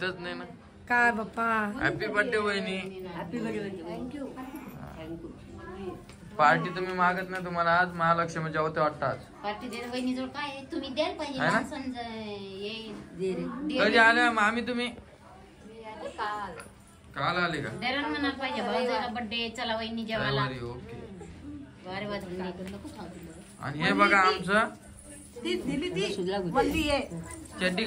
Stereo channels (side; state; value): both; identical; correlation 1.00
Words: नाही ना. काय बाप्पा. हॅपी बर्थडे वहिनी. Happy birthday. थँक्यू. पार्टी तुम्ही मागत नाही, तुम्हाला आज महालक्ष्मीच्या होते वाटतं आज. पार्टी दे वहिनीजवळ काय आहे? तुम्ही द्यायला पाहिजे आहे ना? माणसांचं ये कधी आल्या मामी तुम्ही? काल काल आले का? द्यायला म्हणायला पाहिजे भाऊजाला बर्थडे चला वहिनी जेवायला. रविवारी, ओके. वारे वाजले नको खाऊ. आणि हे बघा आमचं चड्डी